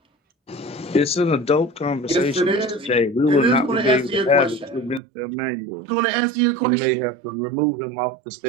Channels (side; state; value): left; drops out; at 5.0 s